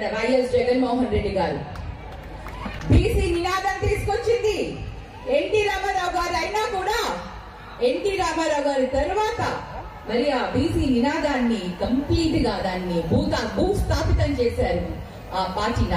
వైఎస్ జగన్మోహన్ రెడ్డి గారు. బీసీ నినాదం తీసుకొచ్చింది ఎన్టీ రామారావు గారు అయినా కూడా ఎన్టీ రామారావు గారి తర్వాత మరి ఆ బీసీ నినాదాన్ని కంప్లీట్ గా దాన్ని భూస్థాపితం చేశారు ఆ పార్టీ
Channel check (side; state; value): both; identical; correlation 1.00